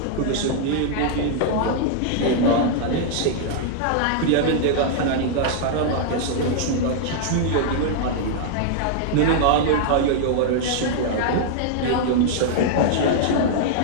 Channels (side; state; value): both; different; correlation -0.01